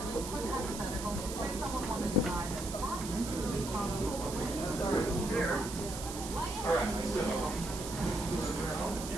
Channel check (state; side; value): noise; right; hiss, 9 dB below the sound